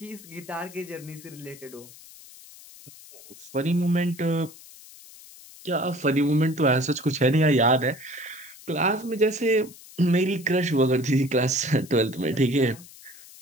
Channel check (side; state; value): left; noise; hiss, 20 dB below the sound